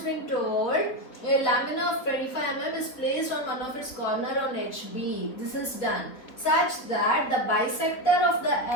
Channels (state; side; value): late; right; 3.8 ms